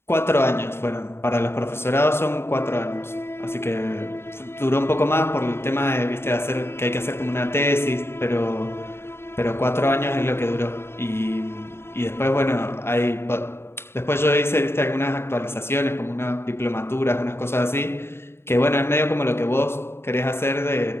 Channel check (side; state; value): right; late; 0.12 ms